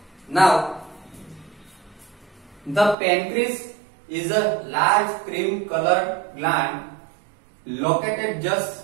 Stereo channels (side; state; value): left; drops out; at 3.0 s